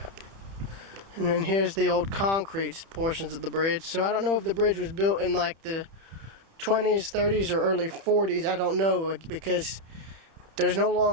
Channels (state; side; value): late; left; 31 ms